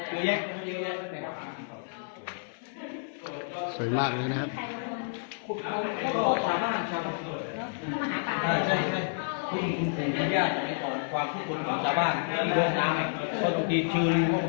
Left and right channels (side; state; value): right; silent; 58 dB below the other